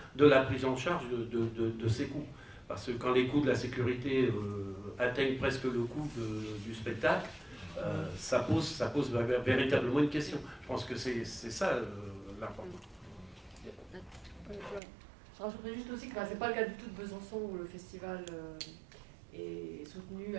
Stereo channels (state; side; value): drops out; left; at 14.8 s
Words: de la prise en charge de ces coûts. Parce que quand les coûts de la sécurité atteignent presque le coût du spectacle, ça pose véritablement une question. Je pense que c'est ça l'important. Je rajouterais juste aussi que c'est pas le cas du tout de Besançon où le festival est soutenu,